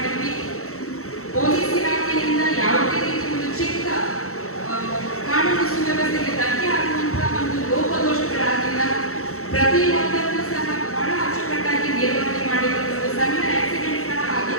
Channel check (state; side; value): late; right; 0.63 ms